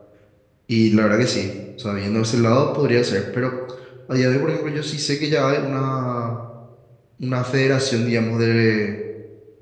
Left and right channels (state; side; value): identical; both; correlation 1.00